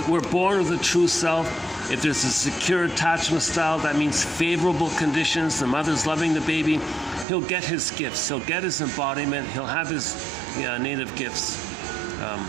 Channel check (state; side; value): drops out; left; at 7.2 s